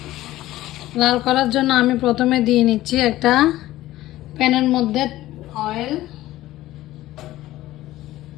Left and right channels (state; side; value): quieter; right; 15.7 dB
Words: লাল করার জন্য আমি প্রথমে দিয়ে নিচ্ছি একটা প্যানের মধ্যে অয়েল।